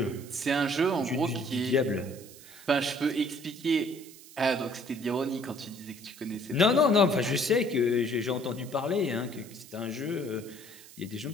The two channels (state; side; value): noise; right; hiss, 19 dB below the sound